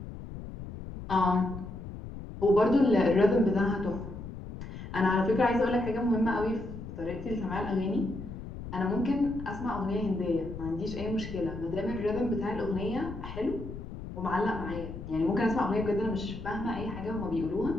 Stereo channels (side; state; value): left; noise; rumble, 10 dB below the sound